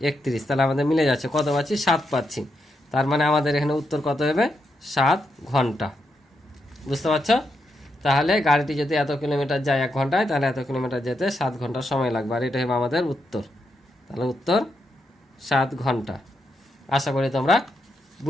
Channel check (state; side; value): normal; both; correlation 0.82